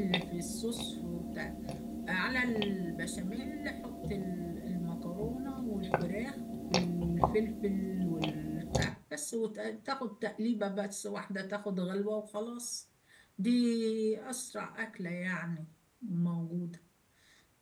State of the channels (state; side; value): identical; both; correlation 1.00